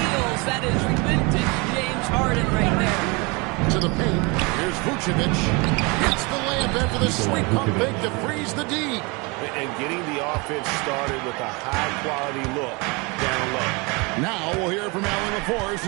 That is vintage James Harden right there. To the paint. Here's Vucevic. Hits the layup after the sweet pump fake to freeze the D. And getting the offense started with a high-quality look down low. Now we'll hear from Allie LaForce,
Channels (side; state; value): left; quieter; 28.1 dB